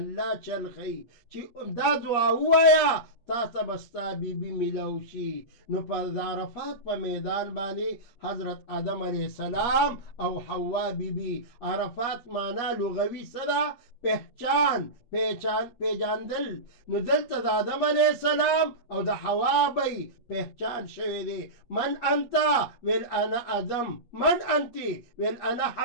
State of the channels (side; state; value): right; late; 8.5 ms